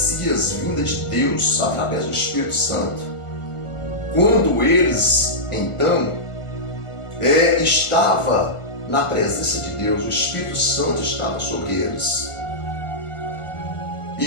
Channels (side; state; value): right; late; 1.5 ms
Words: vindas de Deus através do Espírito Santo. Quando eles, então, estava na presença de Deus, o Espírito Santo estava sobre eles.